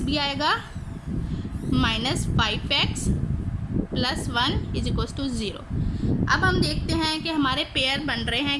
भी आएगा, -5x plus 1 is equal to 0। अब हम देखते हैं कि हमारे पेयर बन रहे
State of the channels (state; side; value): identical; both; correlation 1.00